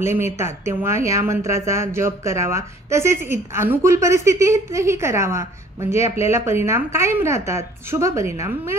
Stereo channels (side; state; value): both; normal; correlation 0.54